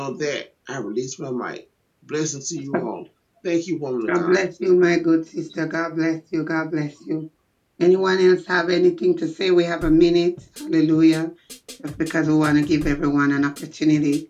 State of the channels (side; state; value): both; identical; correlation 1.00